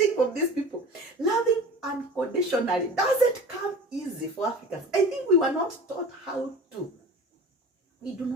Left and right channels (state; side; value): normal; both; correlation 0.38